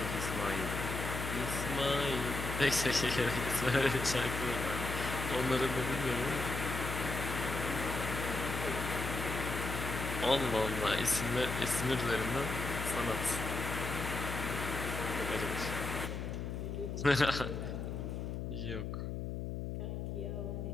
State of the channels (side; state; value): left; noise; hum, 4 dB below the sound